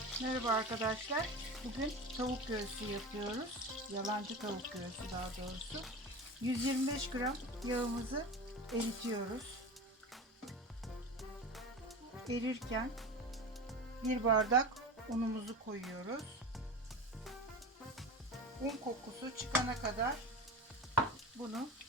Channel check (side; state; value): both; normal; correlation 0.29